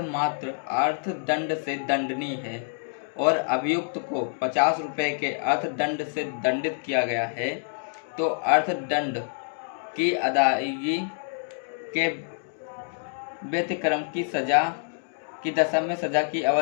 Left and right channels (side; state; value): right; silent; digital silence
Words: मात्र अर्थदंड से दंडनीय है और अभियुक्त को 50 रुपये के अर्थदंड से दंडित किया गया है, तो अर्थदंड की अदायगी के व्यतिक्रम की सजा की दशा में सजा की